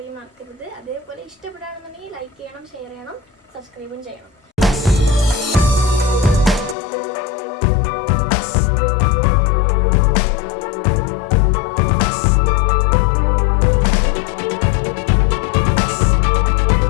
മറക്കരുത്. അതേപോലെ ഇഷ്ടപ്പെടുകയാണെന്നുണ്ടെങ്കിൽ ലൈക്ക് ചെയ്യണം, ഷെയർ ചെയ്യണം, സബ്സ്ക്രൈബും ചെയ്യണം.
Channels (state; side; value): drops out; right; at 6.8 s